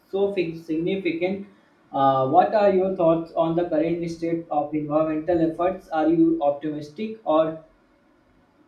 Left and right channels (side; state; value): both; identical; correlation 1.00